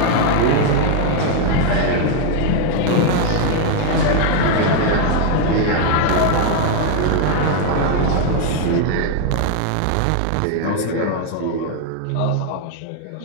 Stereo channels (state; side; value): different; both; correlation 0.00